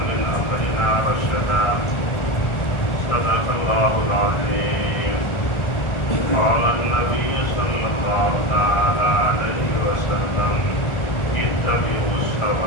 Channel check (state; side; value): late; right; 1.4 ms